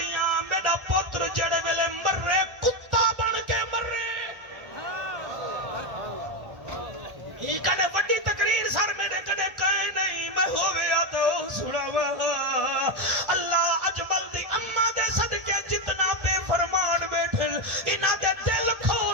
میرا پتر جڑے ویلے مرے کتا بن کے مرے یہ کنے وڈی تقریر سر میرے کنے کہے نہیں میں ہویا تو سناوا اللہ اجمل دی اماں دے صدقے جتنا بے فرمان بیٹھے انہاں دے دل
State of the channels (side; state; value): left; late; 1.4 ms